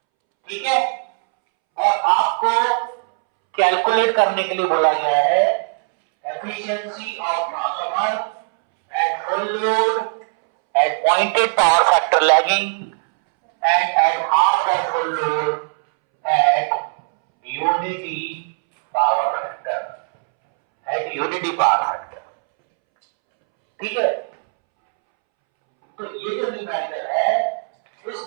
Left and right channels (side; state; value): left; silent; 66 dB below the other